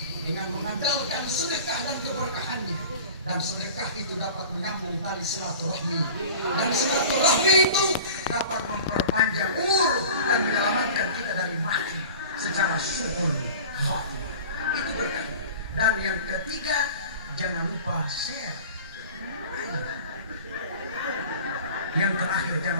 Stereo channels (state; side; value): inverted; both; correlation -0.39